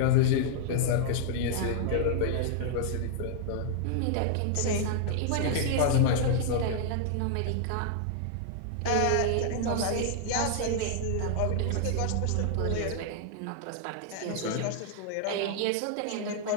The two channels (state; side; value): different; both; correlation -0.01